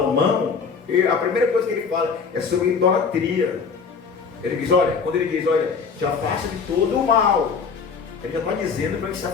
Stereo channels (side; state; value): right; quieter; 5.6 dB